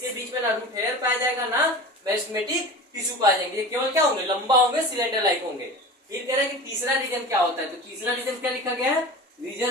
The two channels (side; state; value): both; normal; correlation 0.34